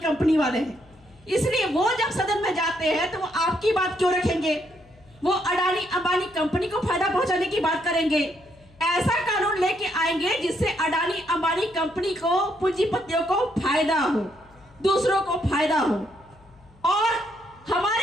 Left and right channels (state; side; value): noise; left; hum, 27 dB below the sound